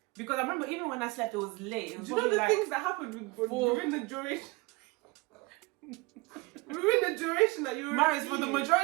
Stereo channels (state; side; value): quieter; left; 25.1 dB